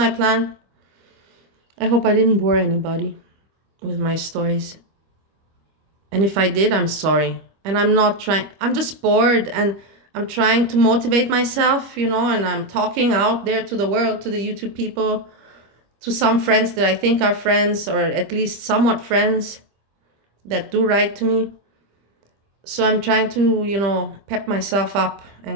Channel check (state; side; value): late; left; 25 ms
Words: plan. I hope I didn't bore anybody with my stories. And if I did, I'm sorry. And I'm not trying, I'm just bored and I'm trying to motivate myself, and I'm talking out there to the world, to the YouTube people, to some friends that I think are friends or at least somewhat friends that do write to me. So I'm trying to, pep myself up